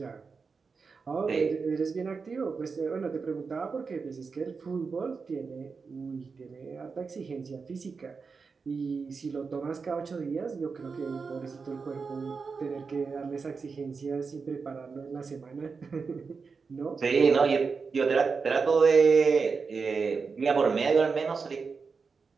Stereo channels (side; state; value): left; quieter; 5.0 dB